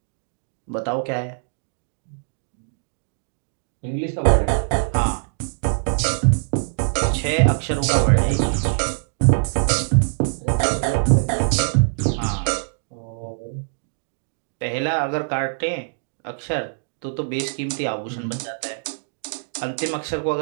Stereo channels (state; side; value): silent; left; digital silence